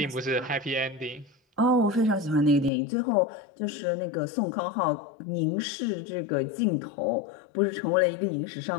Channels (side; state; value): right; drops out; at 2.7 s